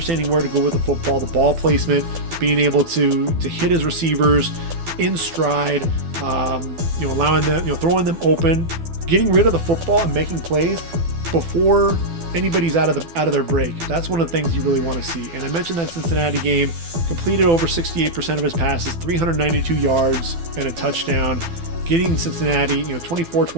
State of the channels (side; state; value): left; late; 12 ms